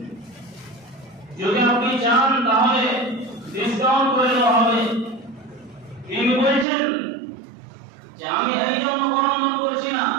যদি আপনি চান তাহলে ডিসকাউন্ট করে দেওয়া হবে। তিনি বলছেন যে আমি এই জন্য করণদান করছি না,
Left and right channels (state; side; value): drops out; left; at 6.7 s